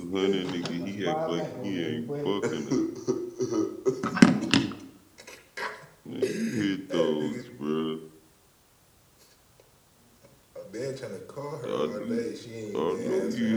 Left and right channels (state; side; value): identical; both; correlation 1.00